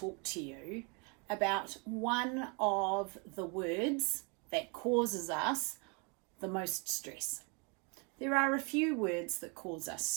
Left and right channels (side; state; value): left; quieter; 33.7 dB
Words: to you about one of the words that causes us the most stress. There are a few words that cause us